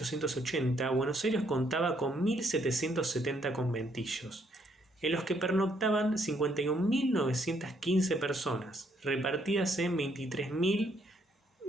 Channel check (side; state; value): both; normal; correlation 0.70